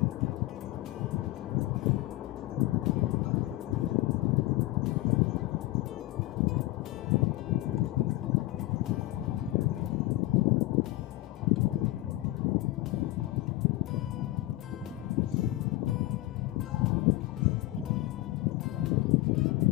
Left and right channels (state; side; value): quieter; right; 17.7 dB